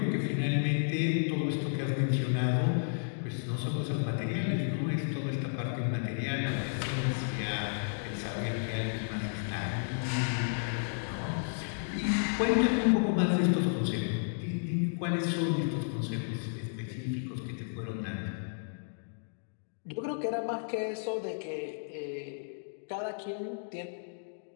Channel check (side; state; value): right; silent; digital silence